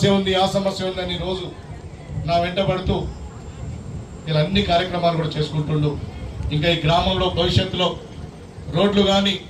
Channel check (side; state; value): both; identical; correlation 1.00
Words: ఉంది, ఆ సమస్య ఉంది అని రోజు నా వెంట పడుతూ ఇలా అన్ని కార్యక్రమాలు కూడా చేసుకుంటుండు. ఇంకా ఈ గ్రామంలో భవిష్యత్తులో రోడ్లు కానీ,